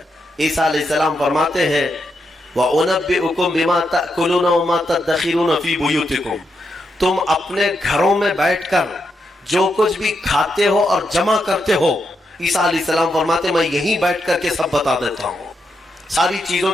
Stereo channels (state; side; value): normal; both; correlation 0.83